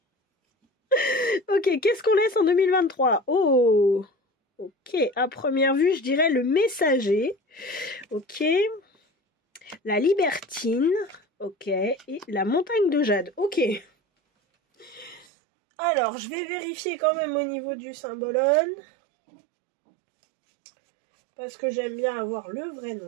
Ok, qu'est-ce qu'on laisse en 2023? Oh, ok, à première vue, je dirais le messager. Ok. La libertine. Ok. Et la montagne de jade. Ok. Alors, je vais vérifier quand même au niveau du symbolone. Parce que j'aime bien avoir le vrai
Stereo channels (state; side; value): drops out; left; at 15.2 s